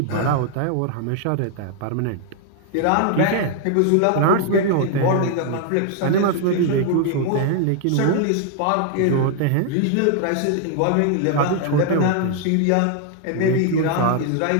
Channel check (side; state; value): both; different; correlation 0.00